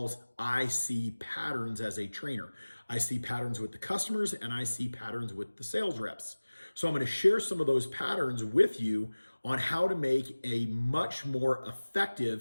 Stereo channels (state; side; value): inverted; both; correlation -1.00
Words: I see patterns as a trainer. I see patterns with the customers and I see patterns with the sales reps. So I'm going to share some of those patterns with you on how to make a much more